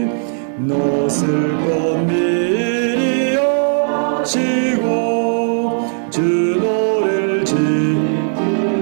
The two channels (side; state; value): left; silent; digital silence